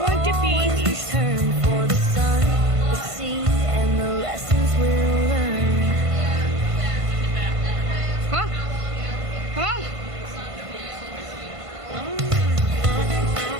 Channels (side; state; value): left; late; 1.5 ms